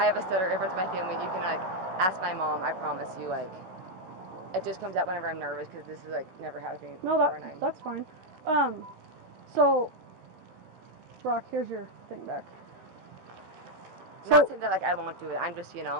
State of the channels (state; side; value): late; left; 16 ms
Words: a stutter. Everyone's my family. You can like ask my mom. I promise you, like it just comes out whenever I'm nervous because this is like never happened to me before. No, that's fine. So Brock, here's your thing back. Not saying that like I won't do it. I'm just, you